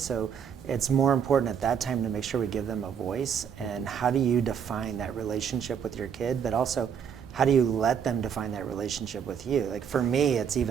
it's more important at that time to make sure we give them a voice. And how do you define that relationship with your kid? But also, how do you let them define that relationship with you? Like for me, it's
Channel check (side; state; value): left; quieter; 7.6 dB